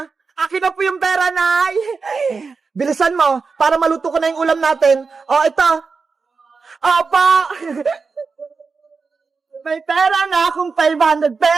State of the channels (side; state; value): left; quieter; 4.7 dB